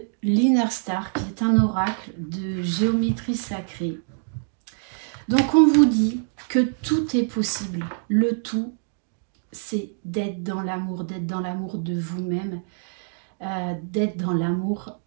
l'Inner Star, qui est un oracle de géométrie sacrée. Donc on vous dit que tout est possible. Le tout, c'est d'être dans l'amour de vous-même, d'être dans l'amour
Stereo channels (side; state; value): left; silent; digital silence